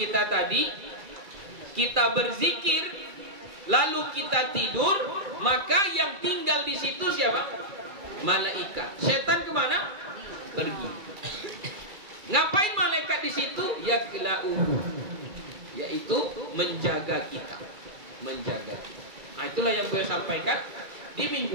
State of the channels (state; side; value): late; left; 2.4 ms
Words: tadi, kita berzikir lalu kita tidur, maka yang tinggal di situ siapa? Malaikat. Setan kemana? Pergi. Ngapain malaikat di situ? Yakla'uhu, yaitu menjaga kita, menjaga kita. Nah, itulah yang beliau sampaikan di